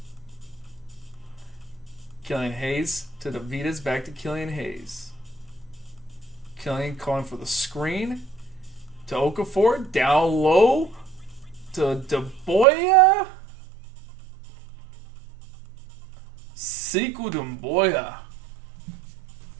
Killian Hayes to DeVitas, back to Killian Hayes. Killian calling for the screen to Okafor, down low to DeBoya. Sekou Doumbouya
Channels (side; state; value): left; drops out; at 12.7 s